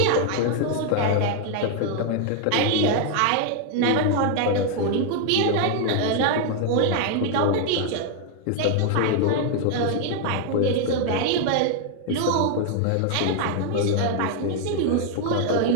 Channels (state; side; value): different; both; correlation 0.00